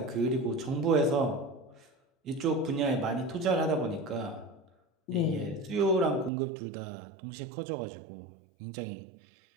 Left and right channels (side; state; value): left; drops out; at 6.3 s